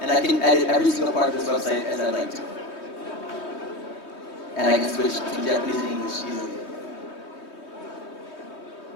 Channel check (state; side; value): late; right; 3.2 ms